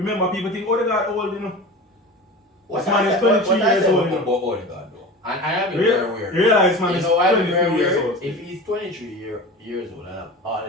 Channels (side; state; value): both; normal; correlation 0.33